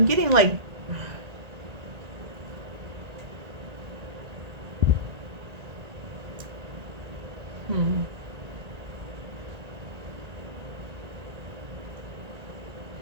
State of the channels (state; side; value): late; left; 1.9 ms